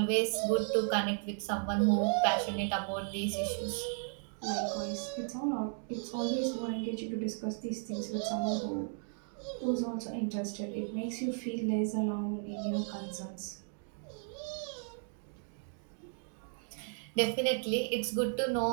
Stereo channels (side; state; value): left; silent; 54 dB below the other